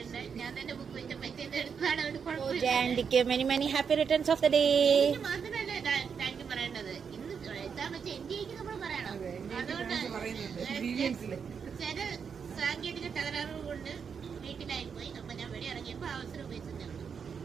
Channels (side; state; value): left; quieter; 6.5 dB